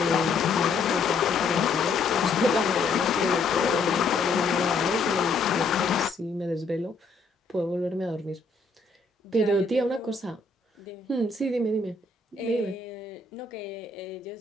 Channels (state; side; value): quieter; right; 4.1 dB